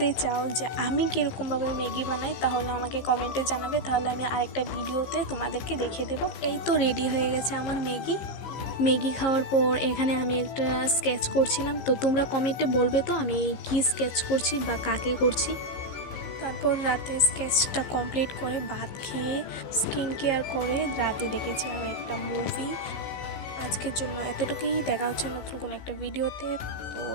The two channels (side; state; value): right; late; 15 ms